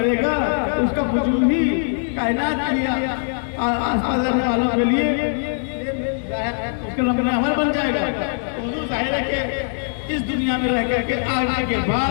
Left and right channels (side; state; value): right; silent; digital silence